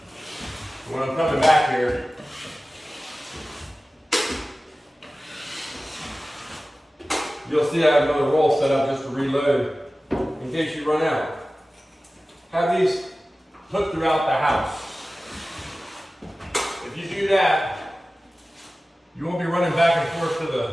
When I'm coming back here, you'll see I have another roll set up just to reload in case you run out. Have these hooked throughout the house. If you do that, you won't be running back and forth to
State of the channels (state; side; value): normal; both; correlation 0.96